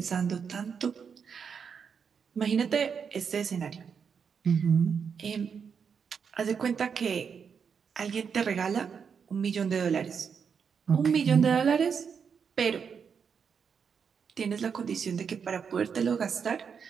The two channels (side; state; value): left; quieter; 6.6 dB